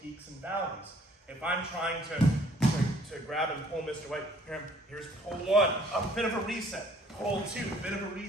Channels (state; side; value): normal; both; correlation 0.59